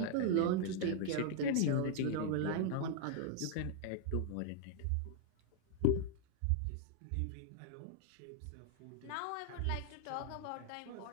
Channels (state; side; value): different; both; correlation -0.01